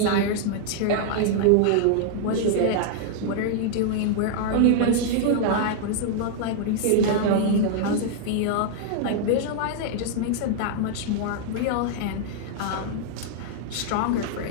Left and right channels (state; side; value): different; both; correlation -0.01